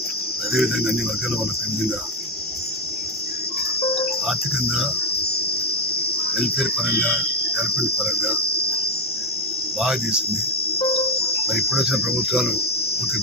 అదేవిధంగా అన్ని వర్గాల వాళ్ళకు ఏ విధంగా ఆర్థికంగా వెల్ఫేర్ పరంగా డెవలప్మెంట్ పరంగా బాగా చేసింది. మరి ఇప్పుడు వచ్చిన ప్రభుత్వాలు పూర్తి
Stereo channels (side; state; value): both; normal; correlation 0.07